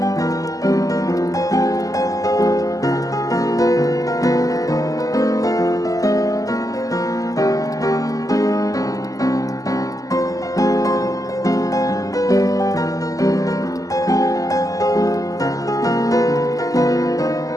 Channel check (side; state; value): right; late; 0.17 ms